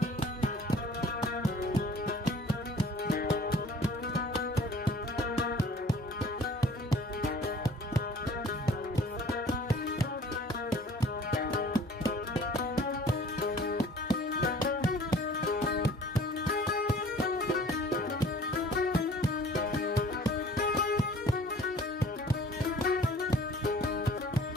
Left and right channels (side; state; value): both; normal; correlation 0.50